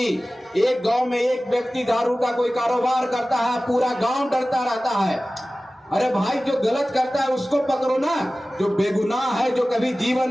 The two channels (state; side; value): normal; both; correlation 0.97